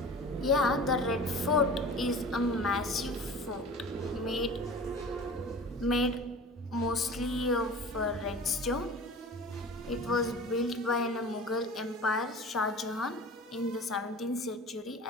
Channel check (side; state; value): both; normal; correlation 0.39